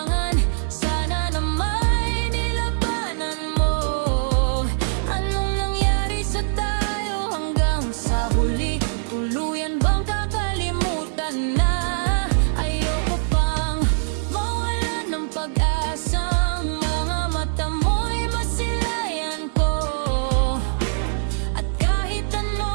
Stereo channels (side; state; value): left; silent; 56 dB below the other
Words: Sana na may nilabanan mo. Anong nangyari sa tayo hanggang sa huli? Tuluyan bang kakalimutan na? Ayoko pang mawalan ng pag-asang mga mata mo'y masilayan ko. At kahit